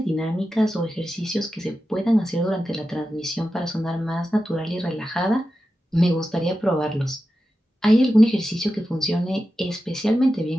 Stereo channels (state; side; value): normal; both; correlation 0.92